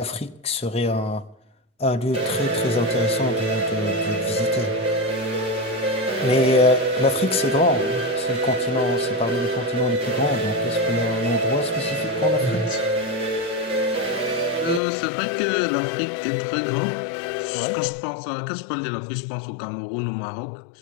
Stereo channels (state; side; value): drops out; right; at 14.8 s